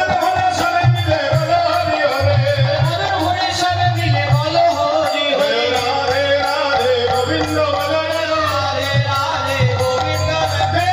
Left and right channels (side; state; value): both; identical; correlation 1.00